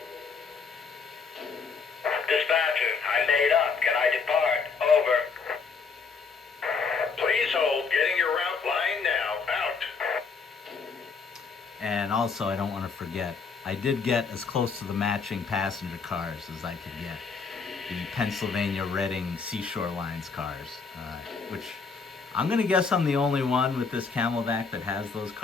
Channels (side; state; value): right; quieter; 5.1 dB